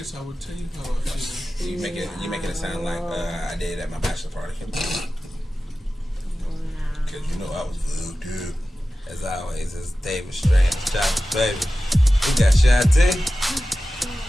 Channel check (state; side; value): normal; both; correlation 0.95